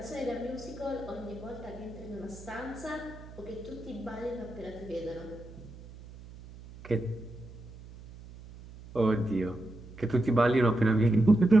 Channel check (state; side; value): noise; right; hum, 17 dB below the sound